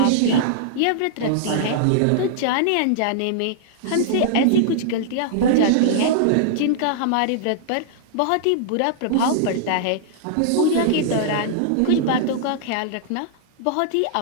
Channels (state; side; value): different; both; correlation -0.01